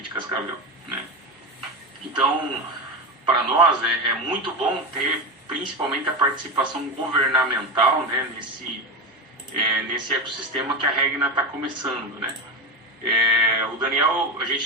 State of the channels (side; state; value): both; normal; correlation 0.19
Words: de Cascavel, né? Então, para nós é muito bom ter principalmente a participação governamental, né, nesse ecossistema que a Regna está começando, né? O Daniel, a